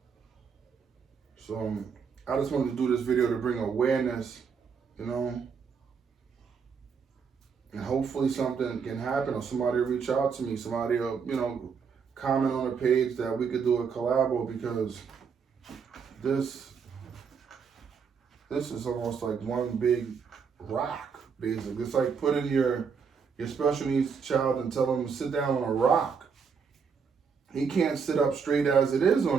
So I just wanted to do this video to bring awareness, you know, and hopefully something can happen, or somebody will reach out to me, somebody will, you know, comment on the page that we could do a collabo, because this is almost like one big rock, basically. It's like putting your special needs child and tell him to sit down on a rock. He can't sit up straight as it is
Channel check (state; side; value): quieter; left; 6.1 dB